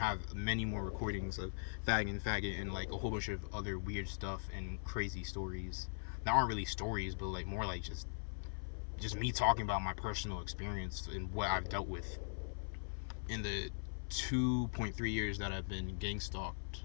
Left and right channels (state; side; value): silent; right; 51 dB below the other